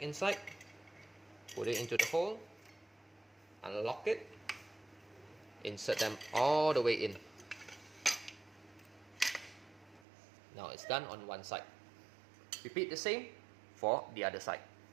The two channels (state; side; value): drops out; left; at 10.1 s